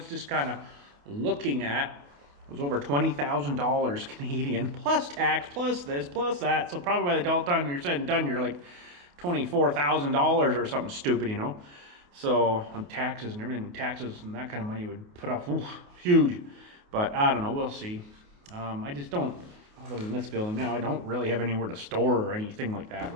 just kind of looking at was over $20,000 Canadian, plus tax, plus this, plus that. So probably by the time you're said and done, you're like $24,000 or something stupid, you know. So on taxes and everything, taxes and that kind of money would put off, ooh, huge. But I don't know, we'll see. I just don't, other than this building now, I don't really have anywhere to store or anything like that,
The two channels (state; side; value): late; left; 28 ms